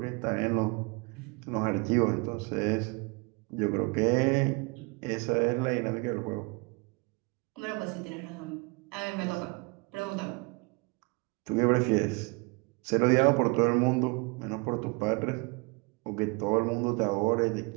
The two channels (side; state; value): left; quieter; 29.0 dB